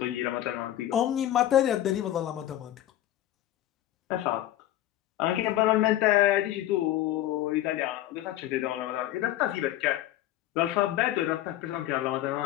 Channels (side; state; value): right; quieter; 13.5 dB